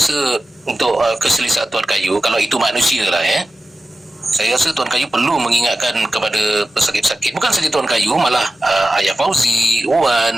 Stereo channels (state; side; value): normal; both; correlation 0.94